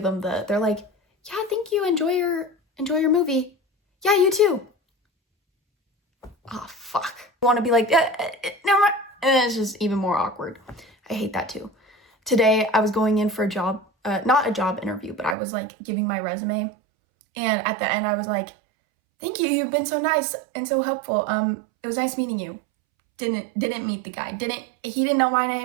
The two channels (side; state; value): left; drops out; at 15.4 s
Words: them they're like, yeah, thank you. Enjoy your movie. Yeah, you too. Oh, fuck. I want to be like, never mind. And it's just even more awkward. I hate that too. Today, I was going in for a job, not a job interview, but I was like giving my resume. And at the end, I was like, thank you. You've been so nice and so helpful. It was nice meeting you. Didn't meet the guy. He didn't know my